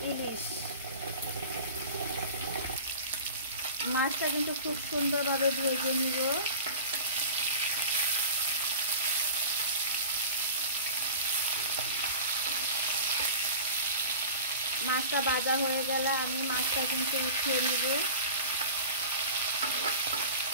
ইলিশ। মাছটা কিন্তু খুব সুন্দরভাবে ভেজে নিব। মাছটা ভাজা হয়ে গেলে আমি মাছটা কিন্তু উঠিয়ে নিব।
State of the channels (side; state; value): both; inverted; correlation -0.37